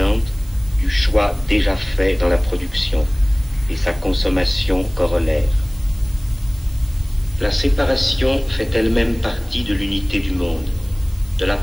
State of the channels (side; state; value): right; noise; hiss, 23 dB below the sound